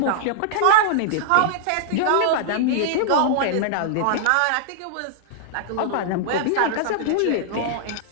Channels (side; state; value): both; different; correlation -0.01